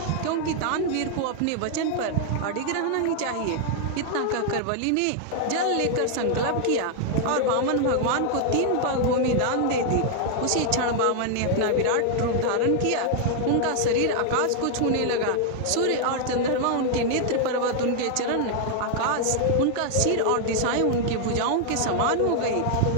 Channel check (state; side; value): different; both; correlation 0.00